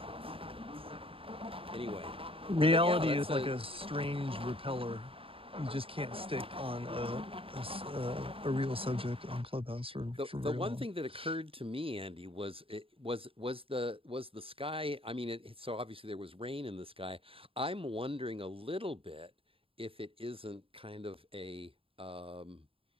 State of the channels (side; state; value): left; late; 0.27 ms